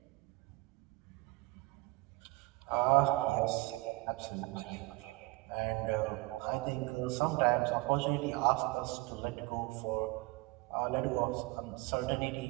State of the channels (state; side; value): quieter; left; 23.6 dB